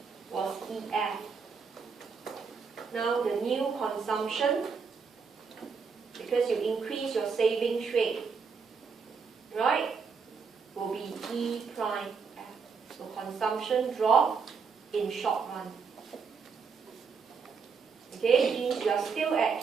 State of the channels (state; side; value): quieter; left; 5.5 dB